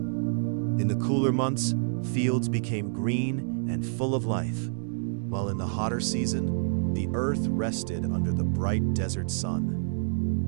the cooler months, fields became green and full of life, while in the hotter season, the earth rested under the bright desert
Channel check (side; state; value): left; silent; digital silence